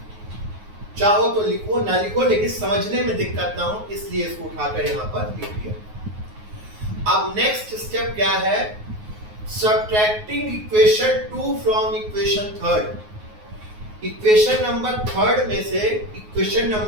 चाहो तो लिखो, ना लिखो, लेकिन समझने में दिक्कत ना हो इसलिए इसको उठाकर यहाँ पर लिख दिया। अब नेक्स्ट स्टेप क्या है, subtracting equation 2 from equation 3। Equation number 3 में से इक्वेशन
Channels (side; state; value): left; late; 9.5 ms